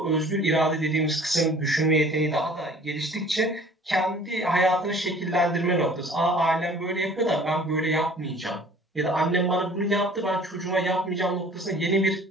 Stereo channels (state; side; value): normal; both; correlation 0.50